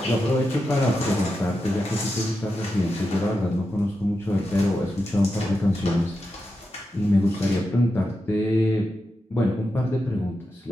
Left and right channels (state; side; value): normal; both; correlation 0.88